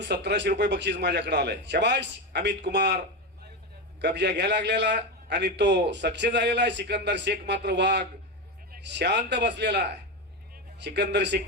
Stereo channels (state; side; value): normal; both; correlation 0.15